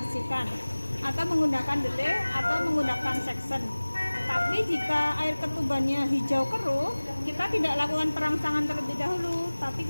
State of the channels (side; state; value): both; inverted; correlation -1.00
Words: atau menggunakan dede atau menggunakan section. Tapi jika air ketubannya hijau keruh, kita tidak lakukan perangsangan terlebih dahulu, tapi